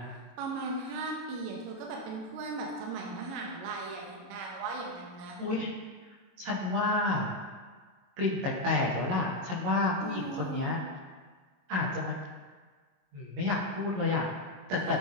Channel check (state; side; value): late; left; 22 ms